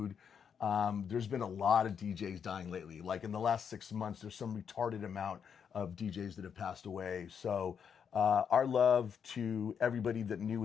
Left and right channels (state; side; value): quieter; right; 7.3 dB